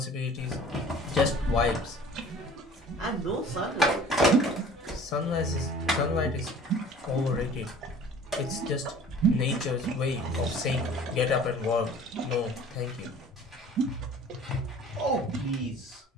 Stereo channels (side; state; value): both; normal; correlation 0.47